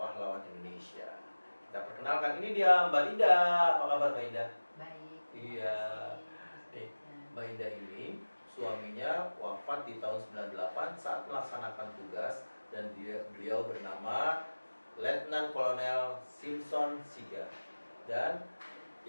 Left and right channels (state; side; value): inverted; both; correlation -1.00